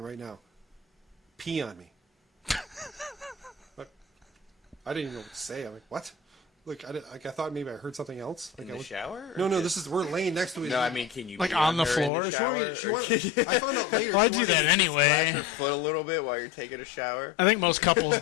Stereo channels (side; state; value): right; drops out; at 12.1 s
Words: right now. Pee on me. Like, I didn't even know what to say. I'm like, what? Like I thought maybe I heard something else. Like In the shower? No, or this is we're laying next to each No, other. I mean, can you Like pee on the her in floor? She wanted, I found out later. Well, I she do wanted that to- anyway. Your foot a little bit while you're taking a shower. I think most couples